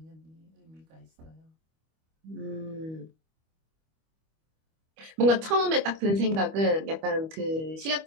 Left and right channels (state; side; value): late; left; 25 ms